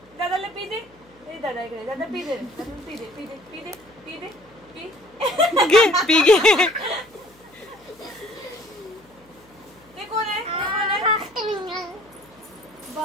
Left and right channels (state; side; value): noise; left; hum, 30 dB below the sound